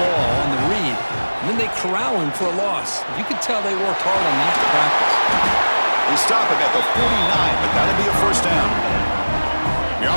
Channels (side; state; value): both; inverted; correlation -1.00